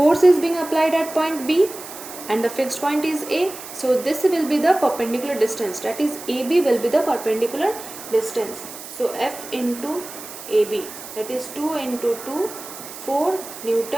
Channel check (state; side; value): noise; right; hiss, 13 dB below the sound